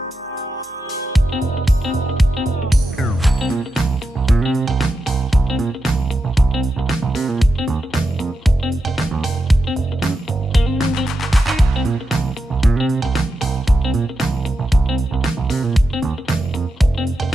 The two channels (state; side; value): normal; both; correlation 0.88